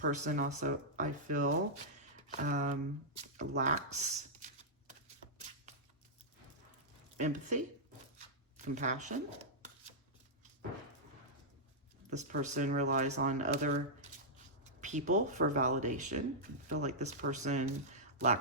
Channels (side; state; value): both; normal; correlation -0.11